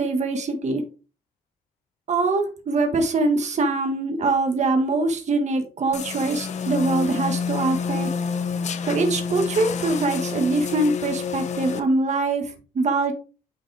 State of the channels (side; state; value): both; normal; correlation 0.55